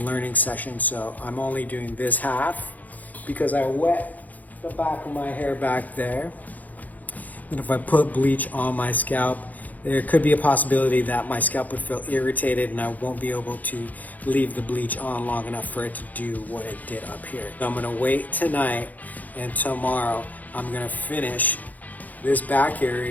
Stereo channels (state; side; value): late; right; 0.080 ms